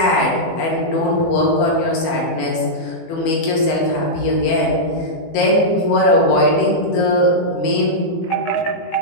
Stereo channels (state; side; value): late; right; 18 ms